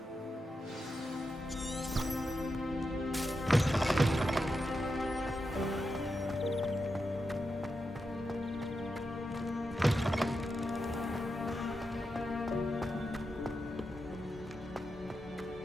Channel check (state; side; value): normal; both; correlation 0.88